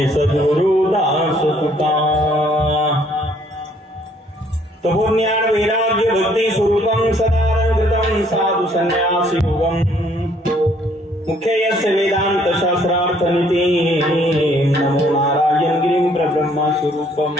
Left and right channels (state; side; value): normal; both; correlation 0.63